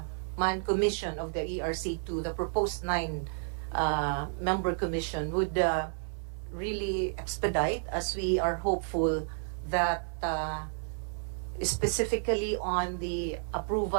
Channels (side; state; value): left; silent; 57 dB below the other